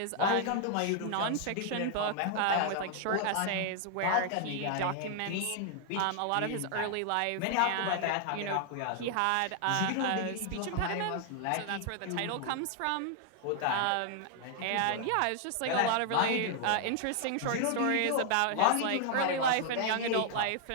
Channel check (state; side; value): different; both; correlation 0.00